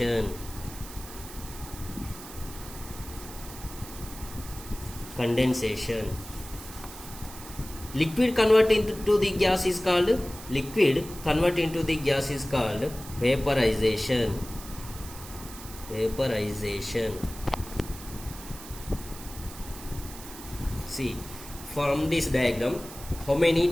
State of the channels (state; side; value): noise; right; hiss, 14 dB below the sound